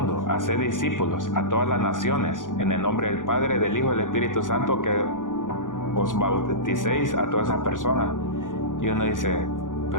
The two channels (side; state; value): right; late; 0.88 ms